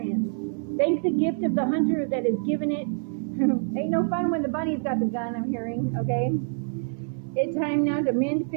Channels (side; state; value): left; silent; 61 dB below the other